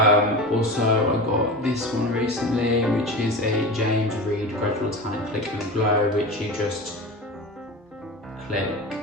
Also, I got this one recently, which is a James Reed Gradual Tan Click and Glow, which you just click,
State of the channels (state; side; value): normal; both; correlation 0.28